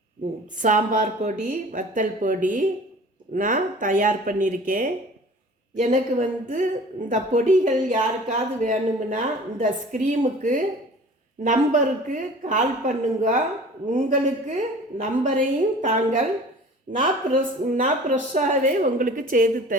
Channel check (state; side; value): normal; both; correlation 0.44